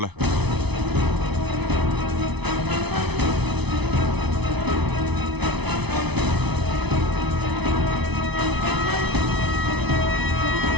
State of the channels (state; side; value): late; left; 0.99 ms